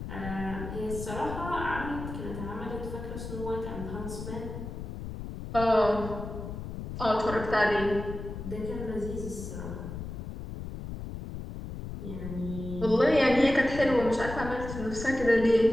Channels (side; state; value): left; noise; rumble, 8 dB below the sound